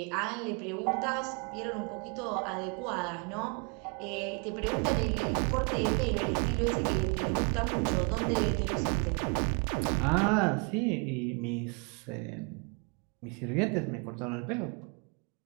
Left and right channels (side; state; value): left; quieter; 34.6 dB